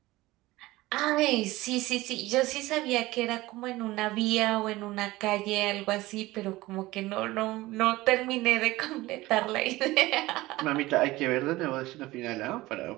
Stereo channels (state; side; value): quieter; left; 18.8 dB